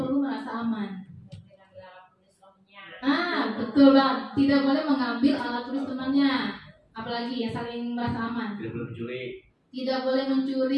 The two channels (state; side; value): identical; both; correlation 1.00